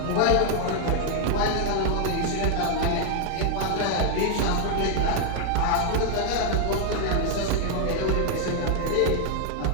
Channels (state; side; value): different; both; correlation 0.00